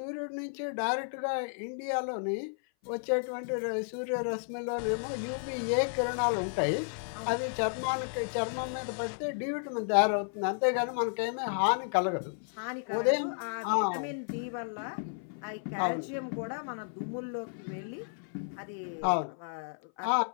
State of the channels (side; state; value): right; silent; 56 dB below the other